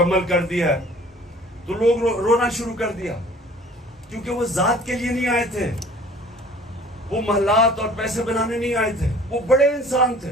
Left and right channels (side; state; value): both; normal; correlation 0.50